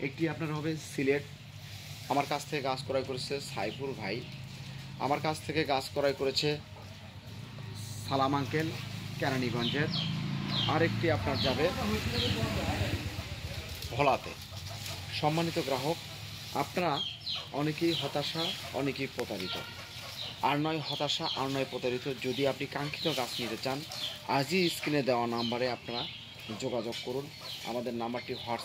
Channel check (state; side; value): identical; both; correlation 1.00